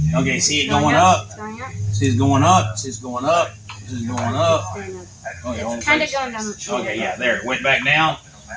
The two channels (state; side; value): identical; both; correlation 1.00